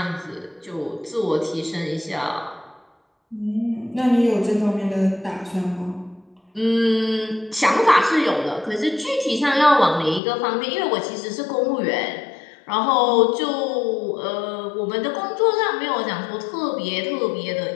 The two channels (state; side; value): drops out; right; at 10.2 s